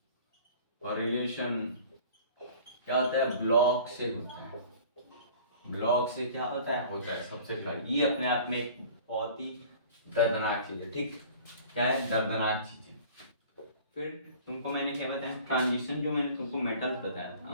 और रिलेशन क्या होता है, ब्लॉक से होता है। ब्लॉक से क्या होता है सबसेल का। ये अपने आप में एक बहुत ही दर्दनाक चीज है, ठीक? क्या है? दर्दनाक चीज है। फिर तुमको मैंने क्या बताया, ट्रांजिशन, जो मैंने तुमको मेटल्स बताया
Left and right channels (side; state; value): both; inverted; correlation -0.46